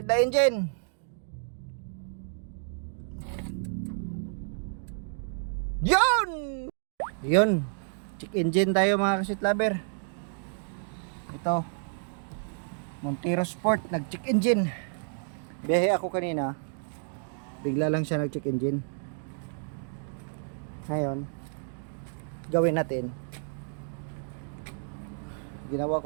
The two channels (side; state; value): left; silent; digital silence